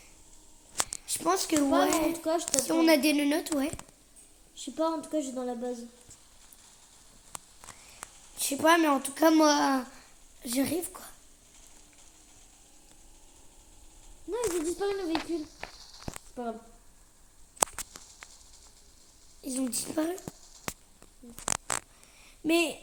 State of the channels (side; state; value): both; identical; correlation 1.00